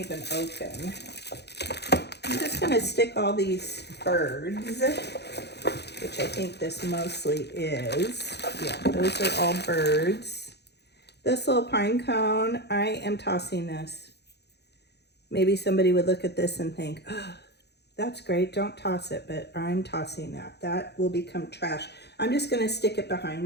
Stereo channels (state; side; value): late; right; 0.48 ms